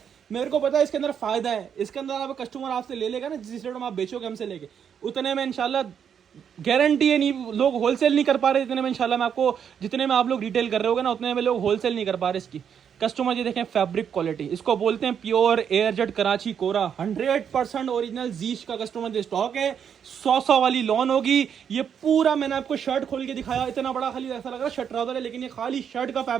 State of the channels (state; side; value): quieter; left; 7.9 dB